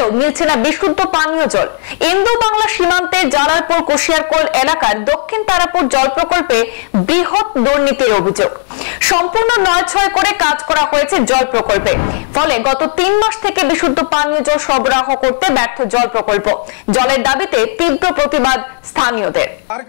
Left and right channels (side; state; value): right; silent; digital silence